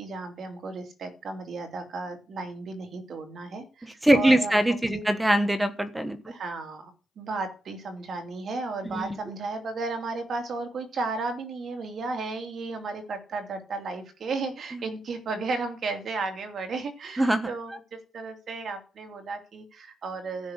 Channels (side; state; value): both; normal; correlation 0.88